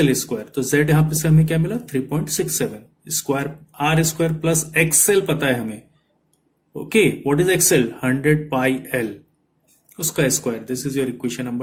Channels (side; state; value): both; identical; correlation 1.00